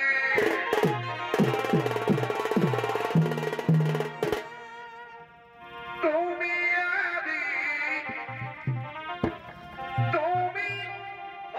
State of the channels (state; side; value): identical; both; correlation 1.00